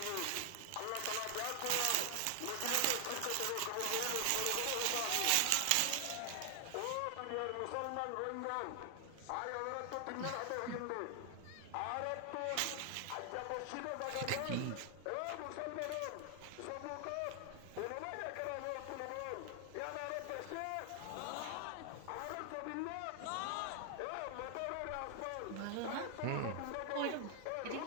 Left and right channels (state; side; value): different; both; correlation 0.00